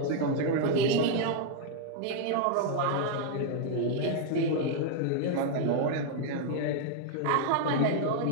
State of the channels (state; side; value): different; both; correlation 0.00